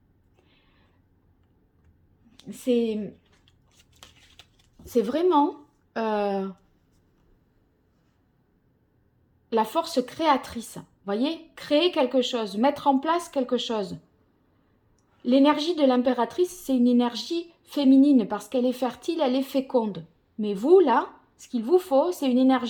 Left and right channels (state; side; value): identical; both; correlation 1.00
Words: C'est vraiment la force créatrice. Vous voyez, créer quelque chose, mettre en place quelque chose. L'énergie de l'impératrice, c'est une énergie féminine parce qu'elle est fertile, elle est féconde. Mais vous, là, ce qu'il vous faut, c'est une